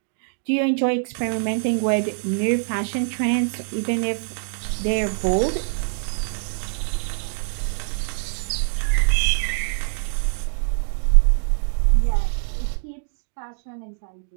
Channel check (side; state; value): left; silent; digital silence